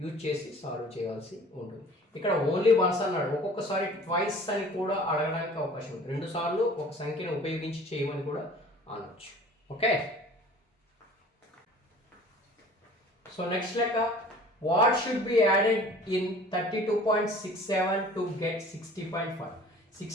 యూజ్ చేసి సాల్వ్ చేయాల్సి ఉంటుంది. ఇక్కడ ఓన్లీ వన్స్ అన్నాడు, ఒక్కొక్కసారి ట్వైస్ అని కూడా అడగడానికి అవకాశం ఉంది. 2 సార్లు ఒక సంఖ్యను ఉపయోగించి చేయమని కూడా అనొచ్చు. ఓకే, సో నెక్స్ట్ లెక్క, what should be added in 32.67 to get 60.5.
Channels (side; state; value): both; normal; correlation 0.47